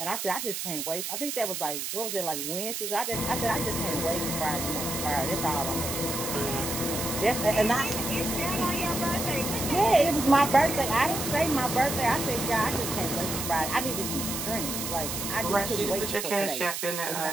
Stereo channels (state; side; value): noise; right; hiss, 4 dB below the sound